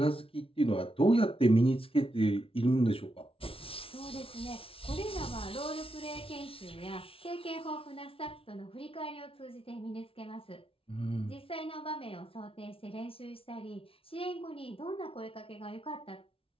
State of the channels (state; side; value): late; right; 0.26 ms